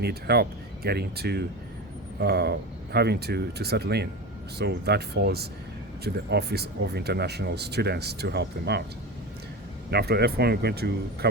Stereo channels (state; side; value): normal; both; correlation 0.25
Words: help getting to having to settle in. So that falls to the Office of International Students to help them out. Now, after F1, we're going to